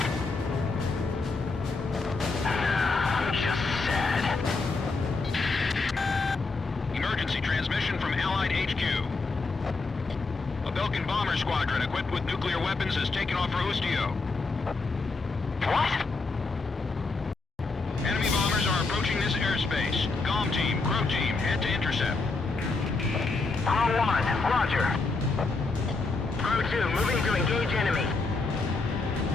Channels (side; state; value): right; quieter; 3.8 dB